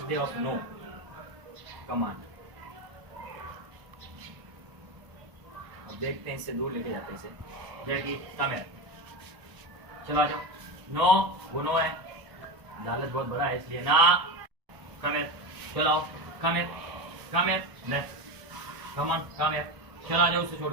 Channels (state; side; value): late; left; 1.0 ms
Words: day of no command. अब देखते हैं इससे दूर लेके जाते हैं इसे. जैकी कम है. चलो आ जाओ. नो. वो नो है. लालच बहुत बड़ा है इसलिए ना. कम है. चलो आओ. कम है. कम है. नेक्स्ट. Come on. कम है. चलो आ जाओ उसे